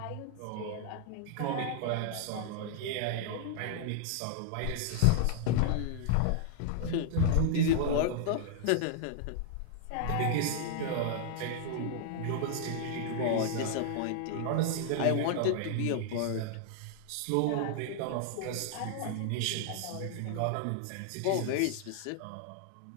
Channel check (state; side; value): different; both; correlation -0.01